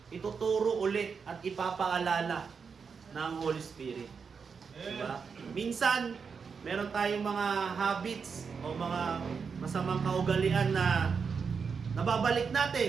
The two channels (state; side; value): quieter; left; 5.8 dB